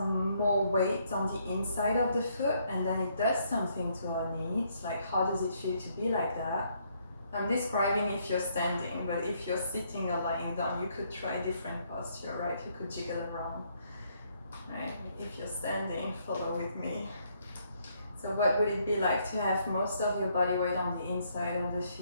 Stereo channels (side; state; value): both; inverted; correlation -0.71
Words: more weight on the inside of the foot and then it does something to our knees, like how does it feel to be like that? I'm describing if you're standing, but if you're sitting or lying down, you could try different posture, right? You could jiggle around, right? If you're standing, follow with me. So what would it be like to have most of your body weight on the inside of the